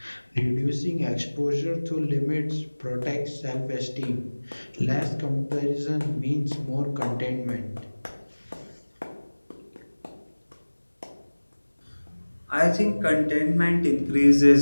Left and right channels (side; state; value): both; inverted; correlation -1.00